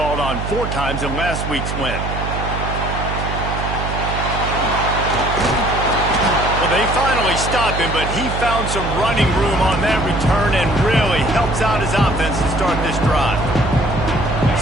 on 4 times in last week's win. Well, they finally stopped him, but he found some running room on that return and really helps out his offense to start this drive.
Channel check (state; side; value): noise; right; hum, 5 dB below the sound